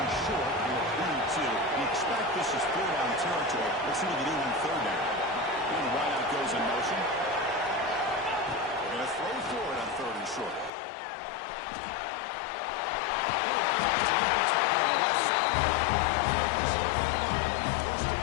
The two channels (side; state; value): right; drops out; at 10.7 s